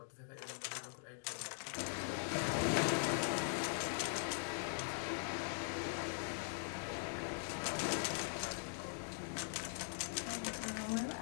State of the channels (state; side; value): silent; right; digital silence